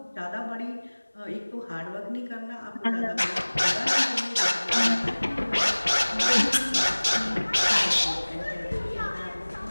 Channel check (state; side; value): inverted; both; correlation -1.00